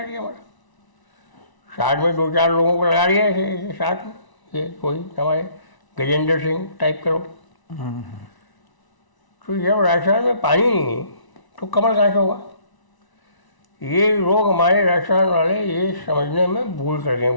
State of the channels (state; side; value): late; right; 1.0 ms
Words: दिया हमारा। साथ में 2-4 लोगों को लगा दिया ऐसे साथ में, ये कोई हमारे गजेंद्र सिंह टाइप करो। तो जब राजस्थान में पानी नहीं तो कमल कहाँ से होगा? ये लोग हमारे राजस्थान वाले ये समझने में भूल कर गए